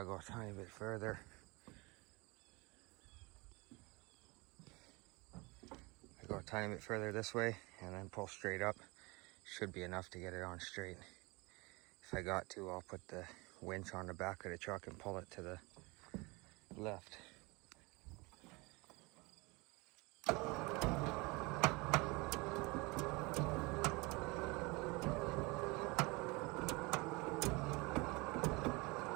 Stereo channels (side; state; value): left; quieter; 25.9 dB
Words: go a tiny bit further. I go a tiny bit further this way and then pull straight up. Should be enough to get it on straight. If I got to, I'll put the winch on the back of the truck and pull it to the left.